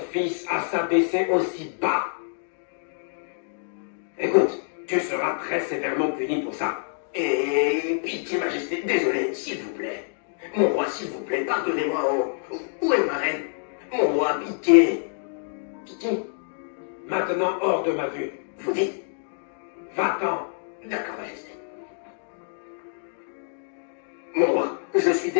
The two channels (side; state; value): right; silent; digital silence